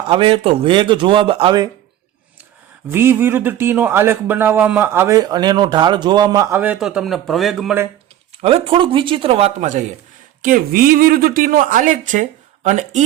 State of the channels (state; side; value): quieter; left; 12.2 dB